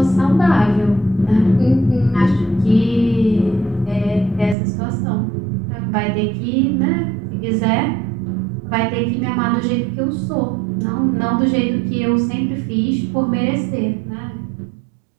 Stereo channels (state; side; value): drops out; left; at 4.5 s